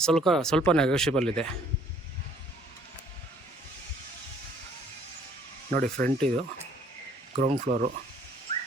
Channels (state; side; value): normal; both; correlation 0.60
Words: ಸ್ವಲ್ಪ ನೆಗೋಷಿಯಬಲ್ ಇದೆ. ನೋಡಿ, ಫ್ರಂಟ್ ಇದು ground floor,